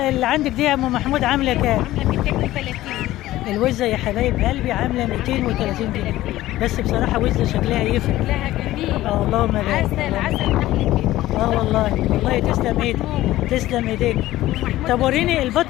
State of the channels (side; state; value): right; quieter; 15.7 dB